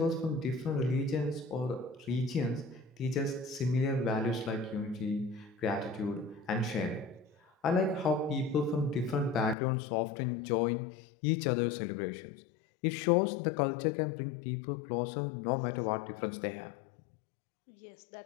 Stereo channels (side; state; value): right; drops out; at 9.6 s